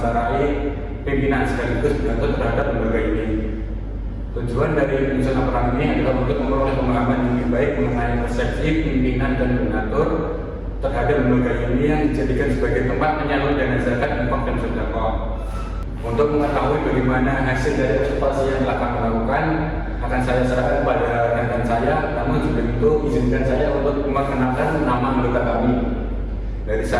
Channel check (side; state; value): both; identical; correlation 1.00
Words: pimpinan sekaligus pengatur terhadap lembaga ini. Tujuan dari penyusunan laporan ini adalah untuk memperoleh pemahaman yang lebih baik mengenai persepsi pimpinan dan pengatur terhadap lembaga ini yang dijadikan sebagai tempat menyalur dana zakat, infak dan sedekah. Untuk mengetahui bagaimana hasil dari observasi yang telah kami lakukan, akan saya serahkan kepada rekan saya. Namun sebelum itu, izinkan saya untuk memperkenalkan nama anggota kami. Dari